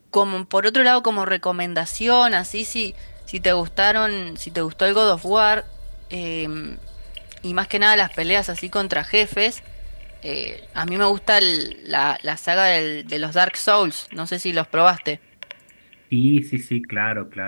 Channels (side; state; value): both; inverted; correlation -1.00